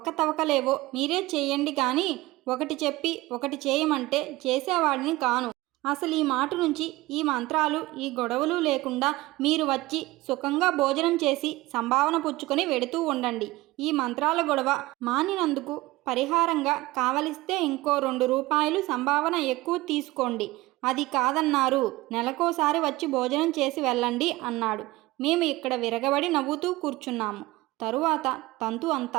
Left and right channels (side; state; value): left; quieter; 19.5 dB